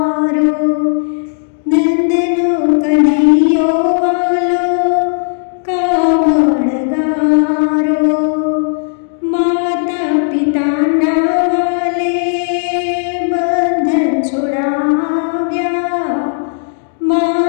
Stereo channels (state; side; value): silent; right; digital silence